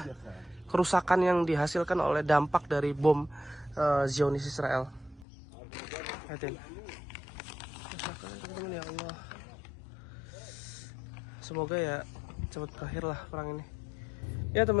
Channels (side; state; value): right; drops out; at 5.2 s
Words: kerusakan yang dihasilkan oleh dampak dari bom Zionis Israel. Liatin. Teman-teman, ya Allah. Semoga ya cepat berakhir lah perang ini. Ya